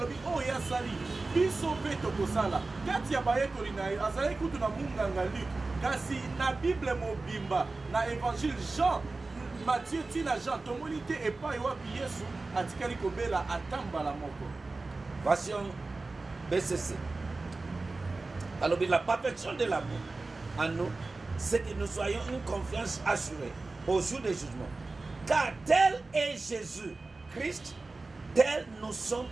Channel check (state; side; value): quieter; left; 3.5 dB